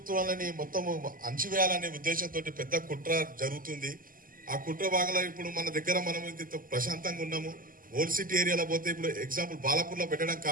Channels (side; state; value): left; late; 0.41 ms